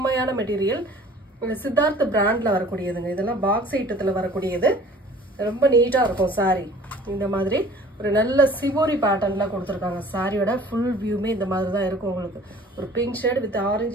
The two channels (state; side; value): normal; both; correlation 0.49